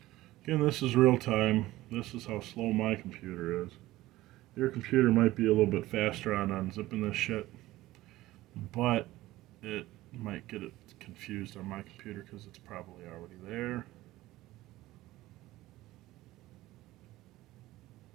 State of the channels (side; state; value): left; quieter; 17.0 dB